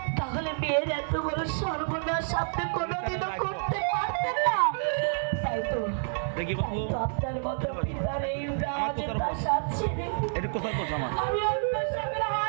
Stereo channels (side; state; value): left; silent; 59 dB below the other